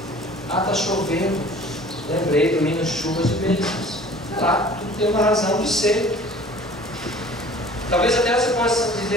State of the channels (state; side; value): normal; both; correlation 0.47